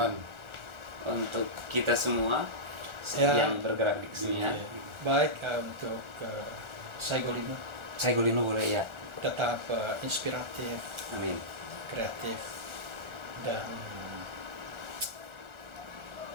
untuk kita semua Ya. yang bergerak di kesenian. Baik untuk Saigolino Saigolino boleh ya. tetap inspiratif, Amin. kreatif dan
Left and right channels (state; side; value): late; left; 1.4 ms